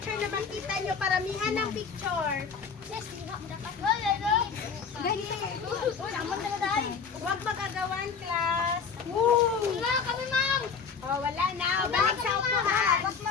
na makita nyo, paramihan ng picture. Sis, hindi mo dapat. Dali. Sama na tayo. Huwag magagawan, class. Wala kami, ma'am. Oh, wala na. Balik sa upuhan. Dapat,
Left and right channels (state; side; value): quieter; right; 5.9 dB